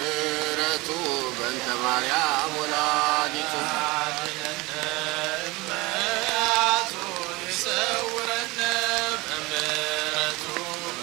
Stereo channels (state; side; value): quieter; left; 22.9 dB